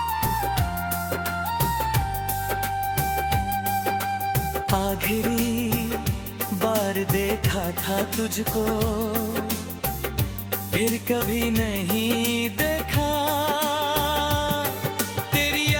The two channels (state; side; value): identical; both; correlation 1.00